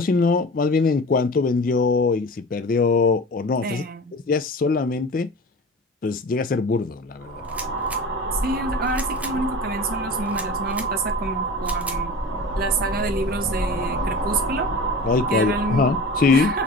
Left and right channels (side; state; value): both; normal; correlation 0.35